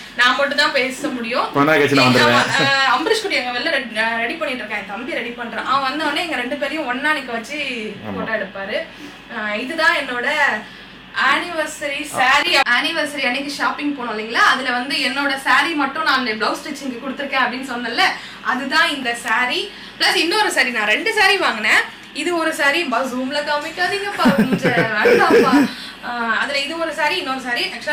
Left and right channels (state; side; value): identical; both; correlation 1.00